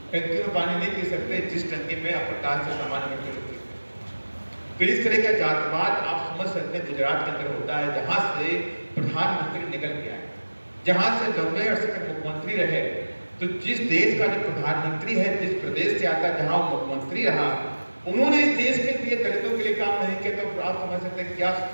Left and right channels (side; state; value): both; inverted; correlation -1.00